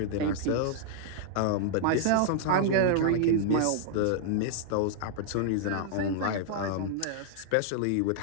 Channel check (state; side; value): different; both; correlation -0.01